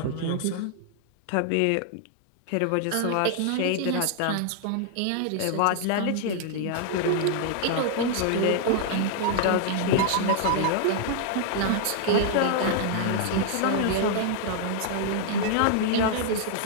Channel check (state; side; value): different; both; correlation -0.01